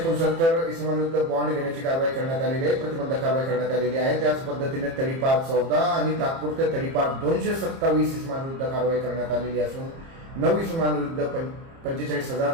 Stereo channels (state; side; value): late; left; 30 ms